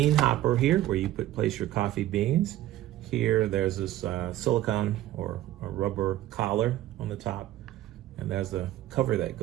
hopper here where you place your coffee beans. Here there's this silicone or a rubber collar on the top, and there's the cover that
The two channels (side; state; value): left; quieter; 14.5 dB